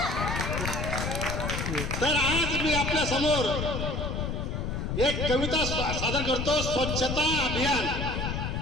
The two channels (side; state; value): left; noise; rumble, 2 dB below the sound